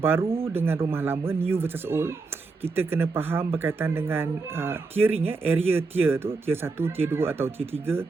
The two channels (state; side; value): quieter; left; 4.1 dB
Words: baru dengan rumah lama, new versus old. Kita kena faham berkaitan dengan tiering, area tier tu, tier 1, tier 2 atau tier 3.